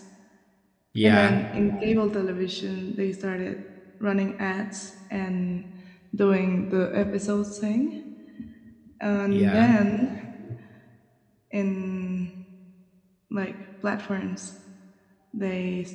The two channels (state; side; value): identical; both; correlation 1.00